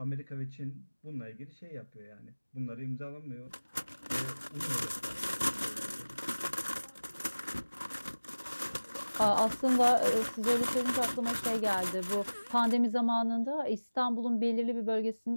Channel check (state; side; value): inverted; both; correlation -1.00